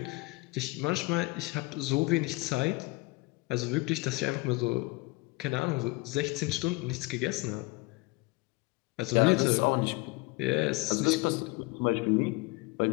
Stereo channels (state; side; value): quieter; right; 23.5 dB